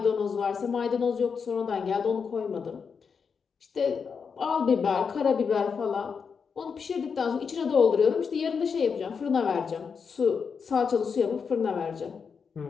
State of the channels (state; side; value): quieter; right; 6.0 dB